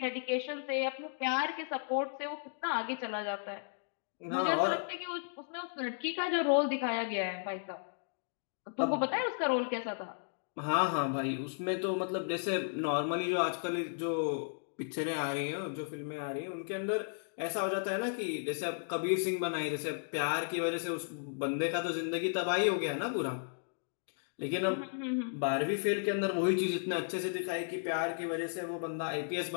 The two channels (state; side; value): silent; right; digital silence